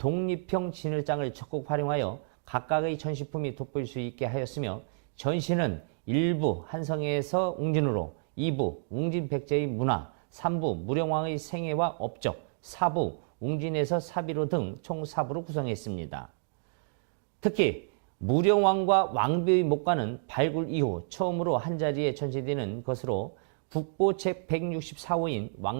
진열장을 적극 활용하여 각각의 전시품이 돋보일 수 있게 하였으며 전시는 1부 한성에서 웅진으로 2부 웅진 백제의 문화, 3부 무령왕의 생애와 업적, 4부 웅진에서 사비로 등 총 4부로 구성했습니다. 특히 무령왕과 왕비의 목관은 발굴 이후 처음으로 한자리에 전시되는 것으로 국보 제164호인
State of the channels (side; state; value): left; silent; digital silence